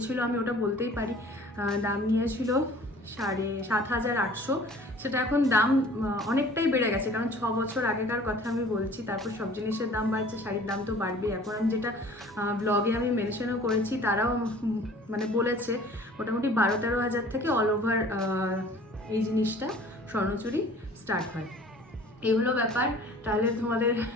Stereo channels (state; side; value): normal; both; correlation 0.49